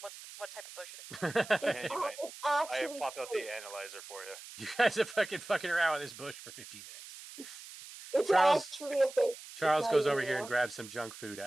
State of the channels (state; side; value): noise; right; hiss, 15 dB below the sound